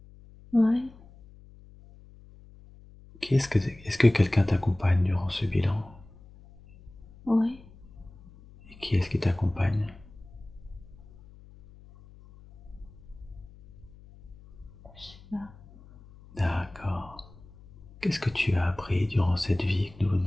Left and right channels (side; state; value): left; noise; hum, 22 dB below the sound